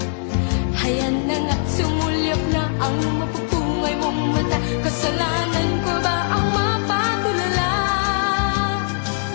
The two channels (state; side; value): silent; right; digital silence